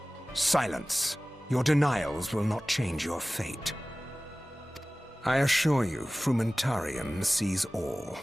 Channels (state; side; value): normal; both; correlation 0.98